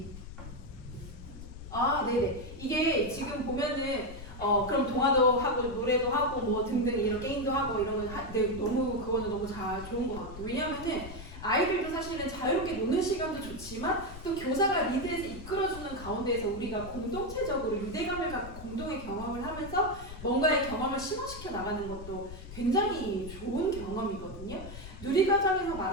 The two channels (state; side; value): noise; left; rumble, 12 dB below the sound